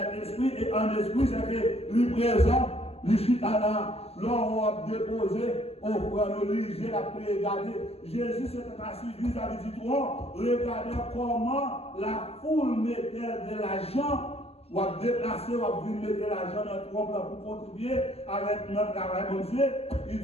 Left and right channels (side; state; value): right; late; 0.29 ms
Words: esprit, et en esprit, c'est que lui présent, lui chita là, l'on a déposé, on prend le lit, la regarder. Jésus s'était assis vis-à-vis du trône, regardez comment la foule mettait de l'argent, ou a déplacé, ou a venir mettre l'argent dans le trône pour contribuer avec notre travail, mon Dieu. Il